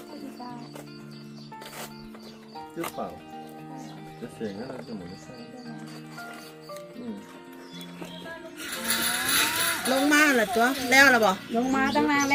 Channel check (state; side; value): identical; both; correlation 1.00